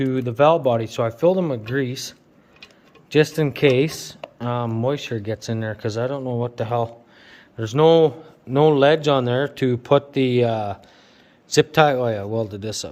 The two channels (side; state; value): both; identical; correlation 1.00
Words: the valve body. So I filled them with grease just in case moisture gets in there, because I don't know what the hell. There's no ledge on there to put the zip tie. Oh yeah, I welded this